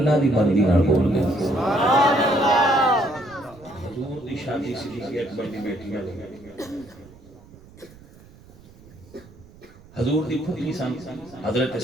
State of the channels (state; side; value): noise; right; rumble, 23 dB below the sound